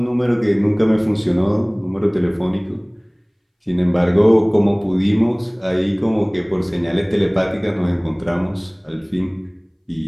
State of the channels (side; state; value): both; identical; correlation 1.00